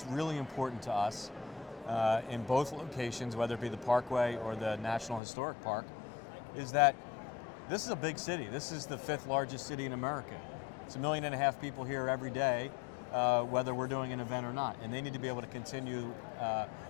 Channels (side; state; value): right; drops out; at 5.2 s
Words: really important to us in both locations, whether it be the Parkway or the National Historic Park, is that this is a big city. This is the 5th largest city in America. It's 1.5 million people here every day, whether we're doing an event or not. And they need to be able to continue